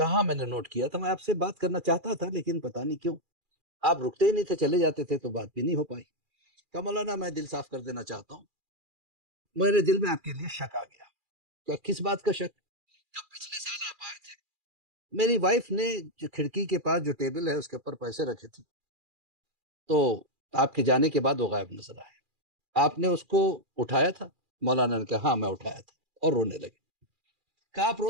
میں نے نوٹ کیا تھا، میں آپ سے بات کرنا چاہتا تھا لیکن پتہ نہیں کیوں آپ رکتے ہی نہیں تھے، چلے جاتے تھے تو بات بھی نہیں ہو پائی۔ کہا مولانا میں دل صاف کر دینا چاہتا ہوں، میرے دل میں آپ کے لیے شک آ گیا۔ کہ کس بات کا شک؟ جب پچھلے سال آپ آئے تھے، میری وائف نے جو کھڑکی کے پاس جو ٹیبل ہے اس کے اوپر پیسے رکھے تھے، تو آپ کے جانے کے بعد وہ غائب نظر آئے۔ آپ نے اس کو اٹھایا تھا؟ مولانا نے کہا ہاں میں اٹھایا تھا، اور رونے لگے۔ کہا آپ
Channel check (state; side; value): late; left; 2.4 ms